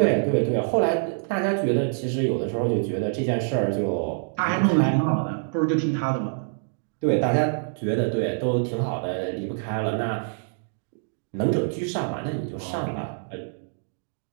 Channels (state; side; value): silent; left; digital silence